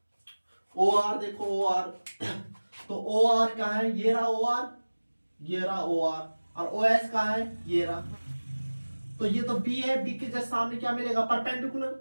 ओ आर देखो ओ आर तो ओ आर कहाँ है, ये रहा ओ आर, ये रहा ओ आर, और ओ एस कहाँ है, ये रहा। तो ये तो बी है, बी के जस्ट सामने क्या मिलेगा, परपेंडिकुलर,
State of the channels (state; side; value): inverted; both; correlation -1.00